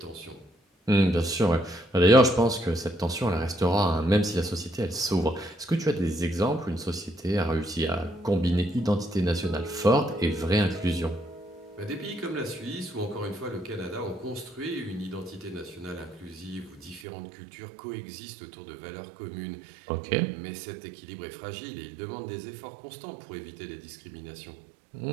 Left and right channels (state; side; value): drops out; left; at 17.0 s